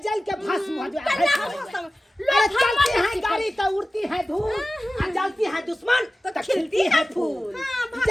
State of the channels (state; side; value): normal; both; correlation 0.96